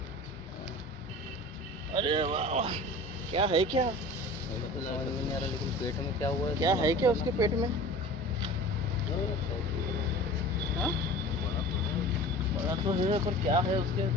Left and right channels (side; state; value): both; normal; correlation 0.39